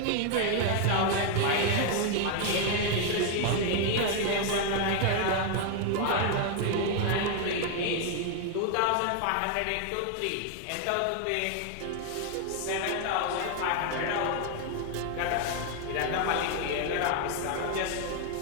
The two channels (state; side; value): different; both; correlation 0.01